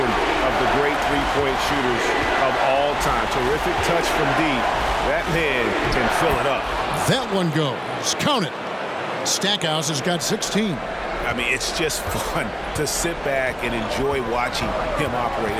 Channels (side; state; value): both; identical; correlation 1.00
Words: of the great three-point shooters of all time. Terrific touch from deep. That man can fill it up. That one goes. Count it. Stackhouse has got 16. I mean, it's just fun to sit back and enjoy watching him operate.